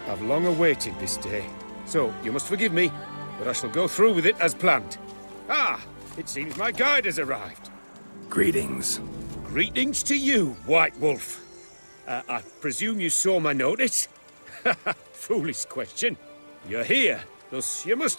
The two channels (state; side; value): inverted; both; correlation -1.00